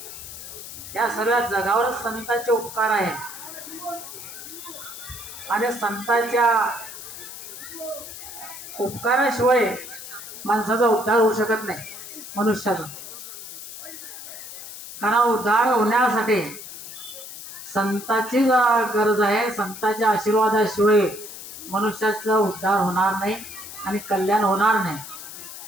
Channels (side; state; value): left; noise; hiss, 12 dB below the sound